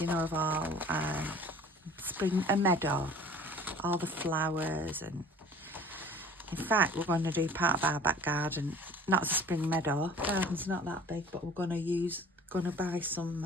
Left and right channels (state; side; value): normal; both; correlation 0.47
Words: know, of all spring, a meadow, all the flowers. And in fact, we're going to do part of our back garden, not as a spring meadow, garden's not that big, but we're going to buy